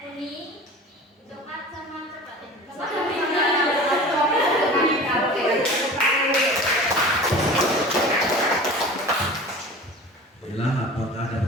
kuning, coklat sama coklat. Bila apakah ada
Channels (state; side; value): normal; both; correlation 0.38